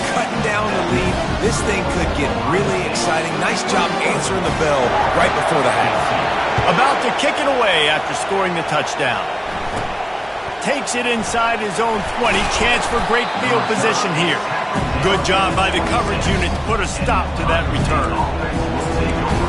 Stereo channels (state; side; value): identical; both; correlation 1.00